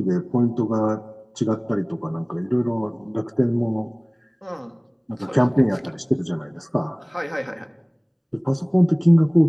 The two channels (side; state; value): both; identical; correlation 1.00